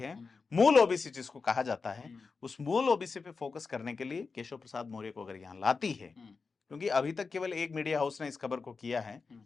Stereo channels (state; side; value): quieter; right; 4.6 dB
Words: मूल ओबीसी जिसको कहा जाता है, उस मूल ओबीसी पे फोकस करने के लिए केशव प्रसाद मौर्य को अगर यहाँ लाती है, क्योंकि अभी तक केवल एक मीडिया हाउस ने इस खबर को किया है,